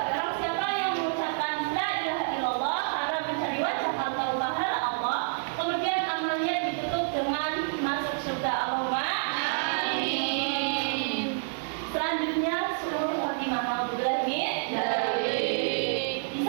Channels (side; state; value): left; silent; 59 dB below the other